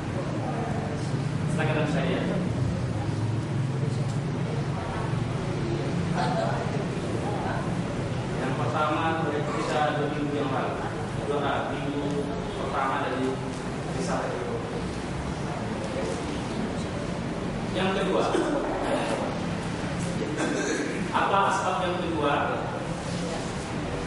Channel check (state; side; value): identical; both; correlation 1.00